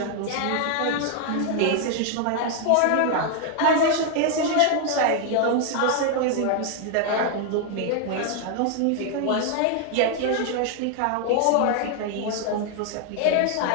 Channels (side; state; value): both; different; correlation 0.00